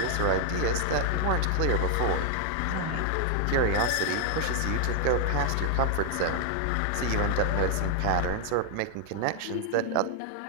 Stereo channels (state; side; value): different; both; correlation 0.00